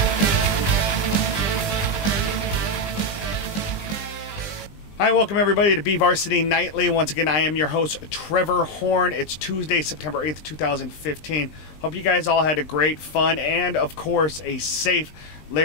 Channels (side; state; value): right; late; 20 ms